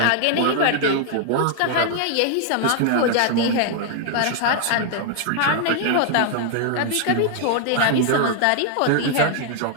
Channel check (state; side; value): different; both; correlation 0.00